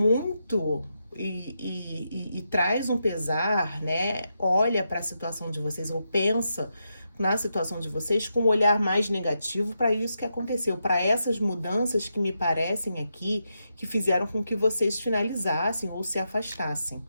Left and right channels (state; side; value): inverted; both; correlation -0.85